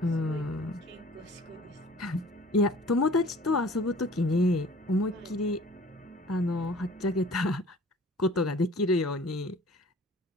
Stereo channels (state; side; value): normal; both; correlation 0.49